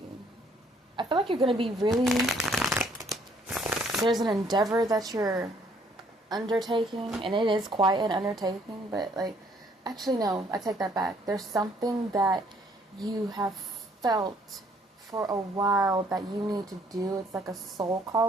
I feel like you're going to be really... There's an endeavor that you're undertaking, and it is quite an undertaking, but, like... Actually, no, I take that back. There's something that you have felt for a while that you need to do. It's like a soul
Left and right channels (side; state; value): both; normal; correlation 0.64